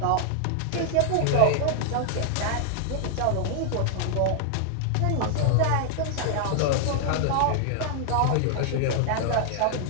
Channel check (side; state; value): both; different; correlation 0.00